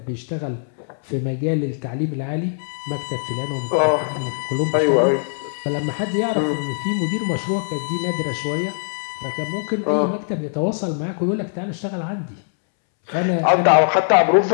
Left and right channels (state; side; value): silent; right; 65 dB below the other